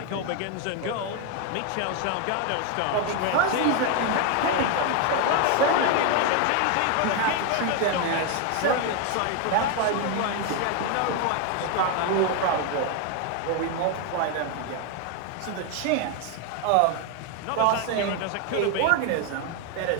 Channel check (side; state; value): both; different; correlation 0.01